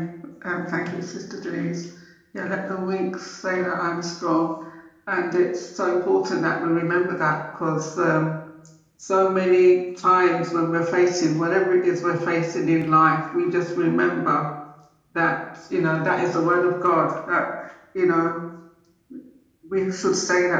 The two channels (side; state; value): both; identical; correlation 1.00